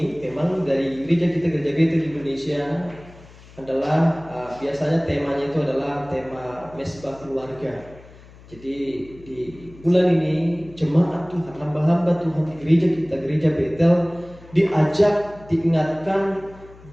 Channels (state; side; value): noise; left; hum, 22 dB below the sound